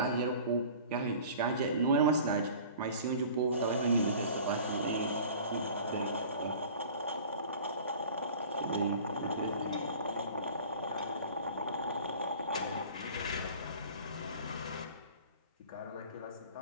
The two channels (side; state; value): both; inverted; correlation -0.43